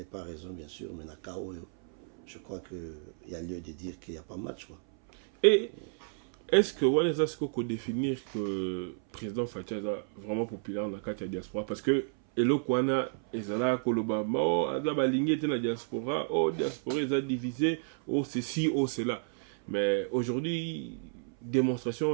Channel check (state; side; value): silent; left; 57 dB below the other